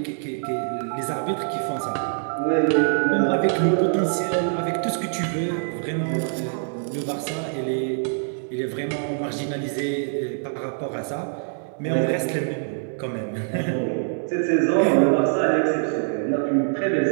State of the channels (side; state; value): left; silent; 59 dB below the other